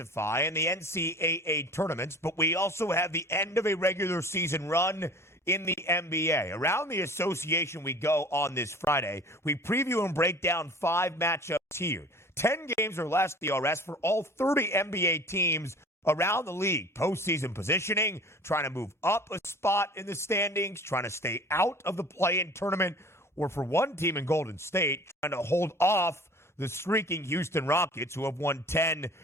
in the NCAA tournaments, but we also have the end of a regular season run in the NBA. Around the association we go on this Friday. We preview and break down 5 matchups here. 10 games or less DRS for all 30 NBA teams around the league. Postseason positioning, trying to move up a spot in the standings, trying to stay out of the play-in tournament, or for one team in Golden State, trying to hold off the streaking Houston Rockets, who have won 10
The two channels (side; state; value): both; normal; correlation 0.44